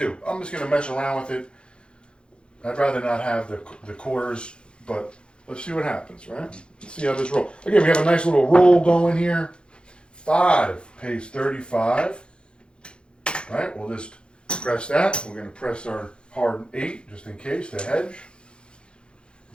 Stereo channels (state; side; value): late; right; 0.054 ms